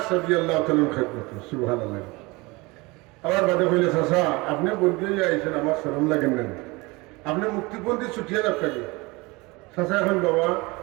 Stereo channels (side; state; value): left; quieter; 24.3 dB